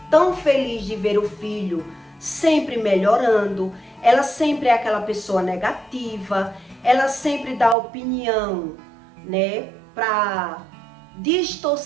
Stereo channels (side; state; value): left; drops out; at 7.8 s